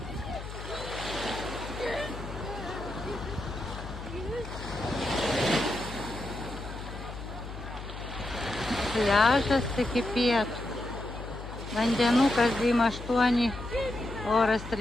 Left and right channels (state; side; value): noise; left; hum, 10 dB below the sound